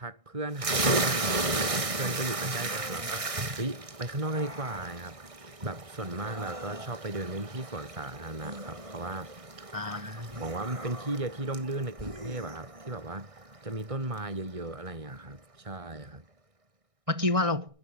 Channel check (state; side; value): late; left; 1.6 ms